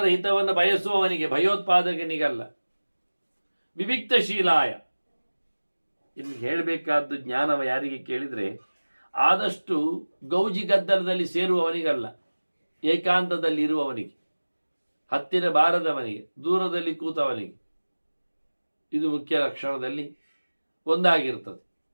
ಹಿತವನ್ನು ಬಯಸುವವನಿಗೆ, ಭಯೋತ್ಪಾದಕನಿಗಲ್ಲ. ವಿವಿಕ್ತಶೀಲಾಯ, ಇನ್ನು ಹೇಳಬೇಕಾದ್ದು ಜ್ಞಾನವ ಯಾರಿಗೆ ಕೇಳಿದರೆ ಆದಷ್ಟು ಗೌಜಿ ಗದ್ದಲದಲ್ಲಿ ಸೇರುವವನಿಗಲ್ಲ, ಏಕಾಂತದಲ್ಲಿ ಇರುವವನಿಗೆ, ಹತ್ತಿರ ಬಾರದವನಿಗೆ, ದೂರದಲ್ಲಿ ಕೂತವನಿಗೆ. ಇದು ಮುಖ್ಯ ಲಕ್ಷಣದಲ್ಲಿ ಒಂದಾಗಿರ್ತದೆ.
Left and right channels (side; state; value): both; inverted; correlation -1.00